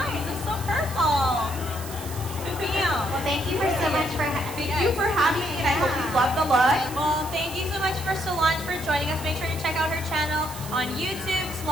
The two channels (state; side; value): noise; right; hiss, 13 dB below the sound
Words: It's so purple. Bam. Well, thank you so much for Thank you for having me, and I hope you love the look. Well, thank you so much for Solange for joining us. Make sure to check out her channel on YouTube,